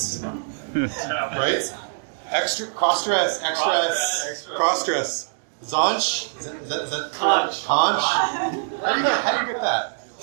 right? Extra, cross-stress, X-stress, cross-stress. Zonch? Is that Conch. Conch? How do you get that?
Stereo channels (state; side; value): silent; left; digital silence